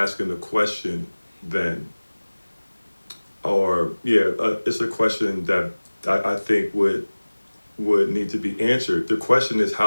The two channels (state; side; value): inverted; both; correlation -1.00